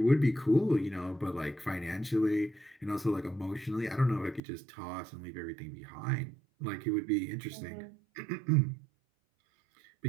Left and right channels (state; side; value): drops out; left; at 4.4 s